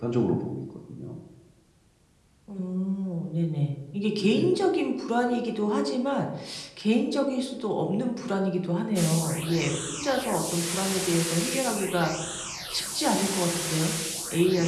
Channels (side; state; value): both; identical; correlation 1.00